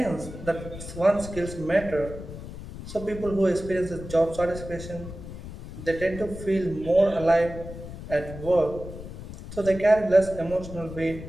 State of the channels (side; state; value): left; noise; rumble, 12 dB below the sound